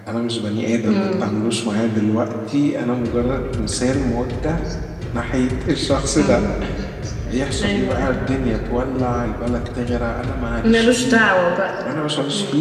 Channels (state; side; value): identical; both; correlation 1.00